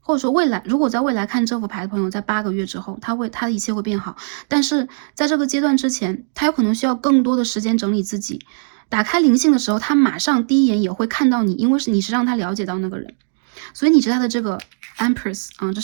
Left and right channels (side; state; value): left; silent; digital silence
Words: 或者说未来，如果在未来看这副牌的朋友，在8个月之后，他的一切会变好。但是在这个阶段之前，他有可能需要更多的时间整理自己。打开灵性的时候，他马上第一眼也会看到你，因为你是让他了解到那个人，所以你是他的这个 Empress 啊，这